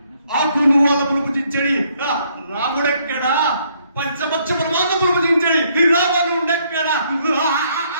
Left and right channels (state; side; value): inverted; both; correlation -0.69